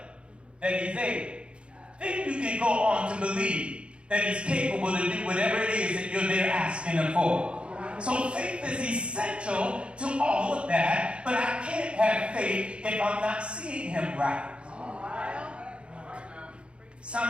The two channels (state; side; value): late; left; 0.058 ms